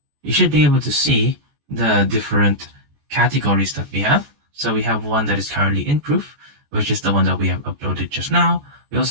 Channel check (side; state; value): left; late; 14 ms